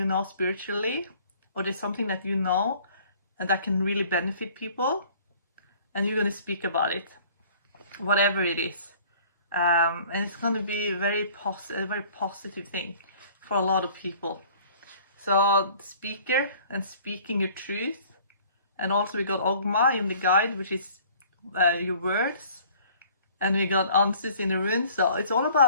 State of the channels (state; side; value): inverted; both; correlation -0.53